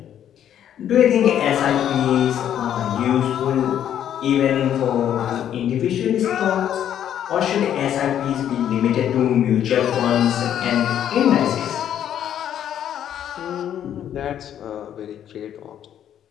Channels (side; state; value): right; quieter; 10.2 dB